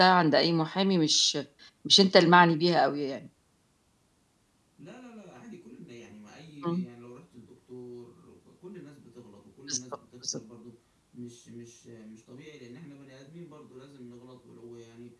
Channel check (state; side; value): identical; both; correlation 1.00